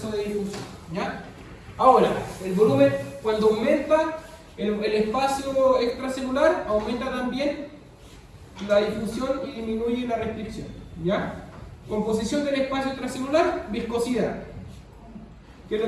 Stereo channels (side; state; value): both; identical; correlation 1.00